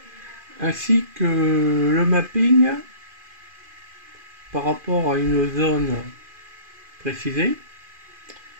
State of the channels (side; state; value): left; late; 2.4 ms